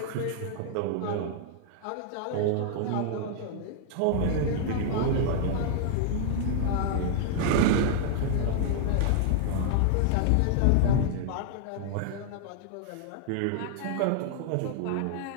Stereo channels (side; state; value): both; different; correlation -0.01